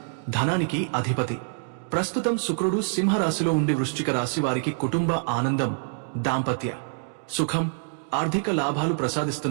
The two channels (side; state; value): left; silent; digital silence